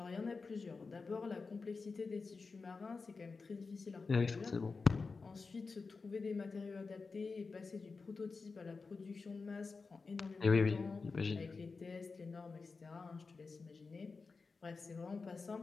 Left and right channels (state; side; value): quieter; right; 4.4 dB